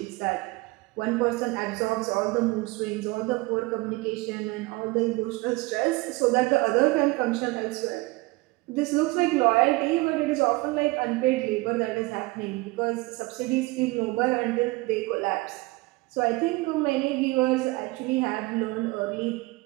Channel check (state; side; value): quieter; left; 23.1 dB